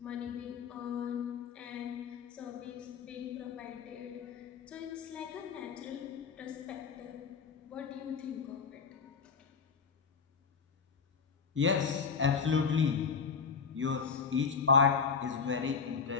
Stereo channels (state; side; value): quieter; right; 5.8 dB